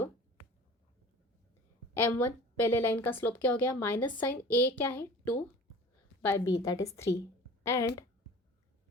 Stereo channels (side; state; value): both; normal; correlation 0.42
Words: m1 पहले लाइन का स्लोप क्या हो गया, माइनस साइन a क्या है 2/b that is 3 and